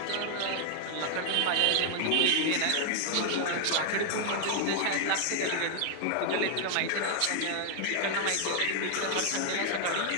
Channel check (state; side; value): different; both; correlation 0.00